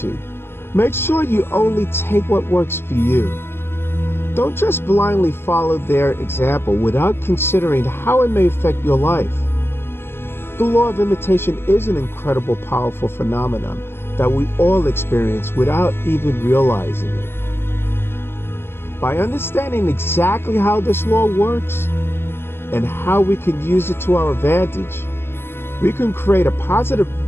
make sure you only take what works for you. Don't just blindly follow their example without considering how it may affect your life. The law of imitation is an incredible, powerful phenomenon that we all experience without even realizing it. By understanding exactly how this law works and how we can use it to our advantage, we can create a positive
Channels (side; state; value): right; late; 0.11 ms